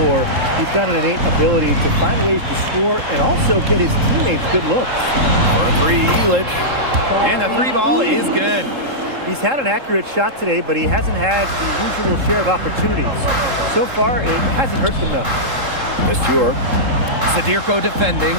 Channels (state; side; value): late; left; 3.7 ms